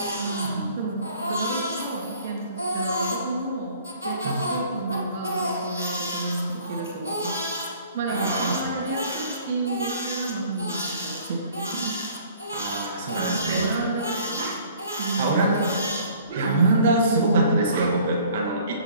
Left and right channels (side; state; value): both; inverted; correlation -0.53